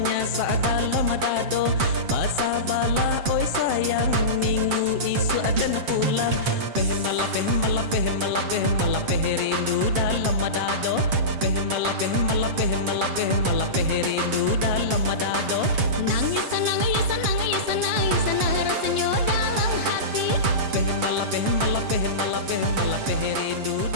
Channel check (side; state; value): left; late; 7.5 ms